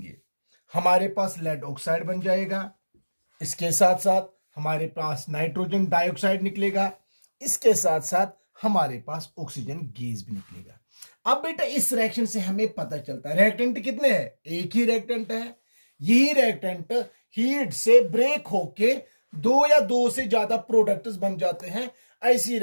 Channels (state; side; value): inverted; both; correlation -1.00